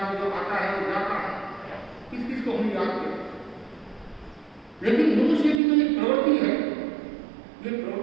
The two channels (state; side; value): drops out; left; at 5.6 s